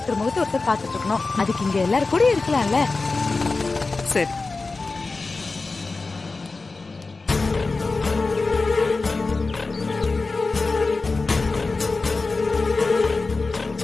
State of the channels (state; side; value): quieter; right; 3.8 dB